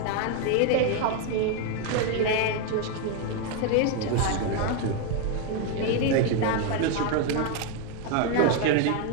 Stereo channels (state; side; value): different; both; correlation 0.01